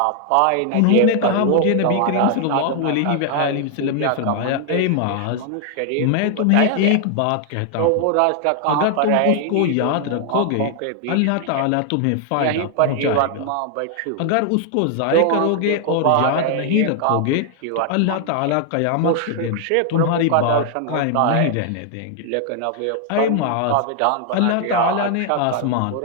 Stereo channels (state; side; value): different; both; correlation 0.00